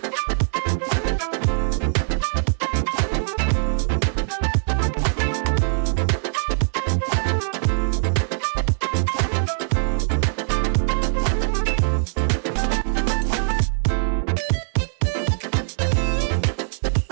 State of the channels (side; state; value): left; silent; digital silence